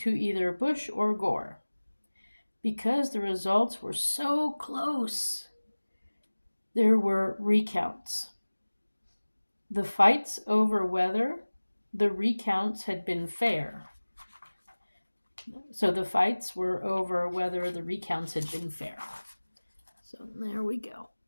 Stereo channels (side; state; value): both; inverted; correlation -1.00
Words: either Bush or Gore. Because the results were so close, there were recounts. The fights over whether the recounts had been fair. So the fights were over whether the recounts had been fair. So there we go.